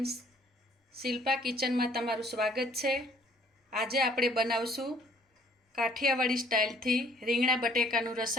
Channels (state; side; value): normal; both; correlation 0.60